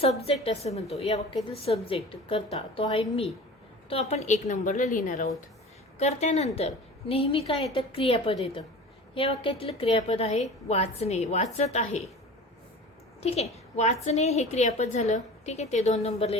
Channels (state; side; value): normal; both; correlation 0.38